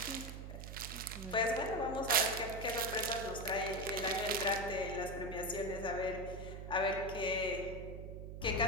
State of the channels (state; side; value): noise; right; hum, 9 dB below the sound